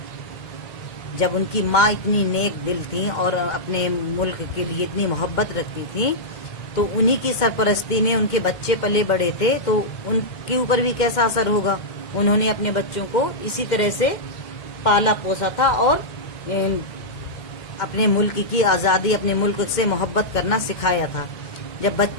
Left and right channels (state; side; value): late; right; 2.1 ms